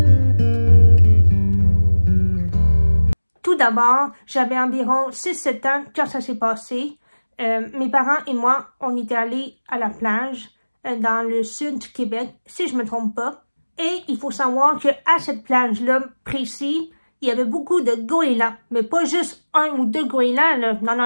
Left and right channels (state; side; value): inverted; both; correlation -1.00